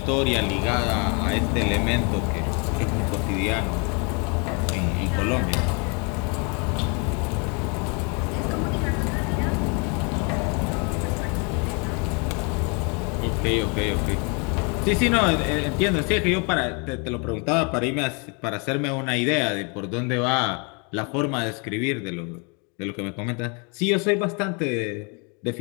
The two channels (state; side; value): quieter; right; 33.8 dB